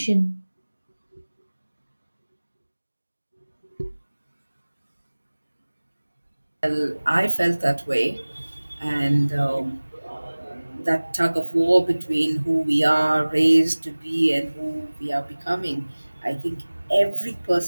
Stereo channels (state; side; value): inverted; both; correlation -1.00